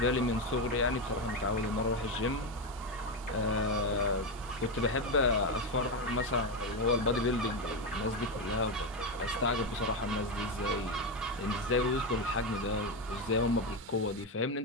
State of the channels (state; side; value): normal; both; correlation 0.11